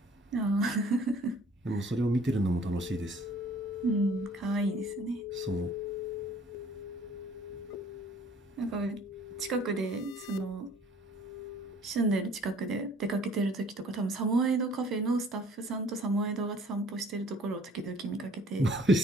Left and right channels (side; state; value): both; normal; correlation 0.54